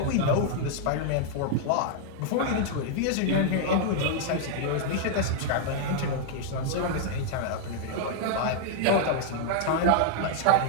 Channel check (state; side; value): different; both; correlation -0.01